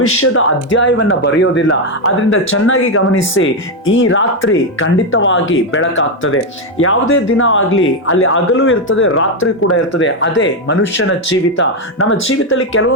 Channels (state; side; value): normal; both; correlation 0.05